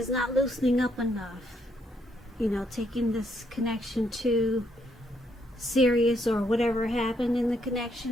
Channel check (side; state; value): both; normal; correlation 0.74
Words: not loosening up enough. You know, taking this connection too serious, or whatever happened in the